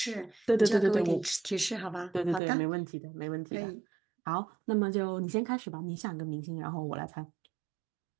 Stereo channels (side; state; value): left; drops out; at 2.4 s